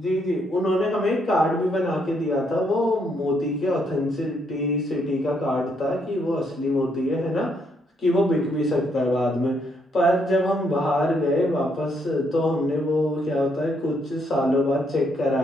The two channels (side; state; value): both; normal; correlation 0.74